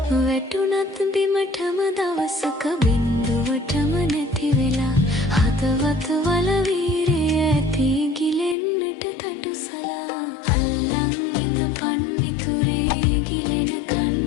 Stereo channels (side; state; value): right; drops out; at 8.6 s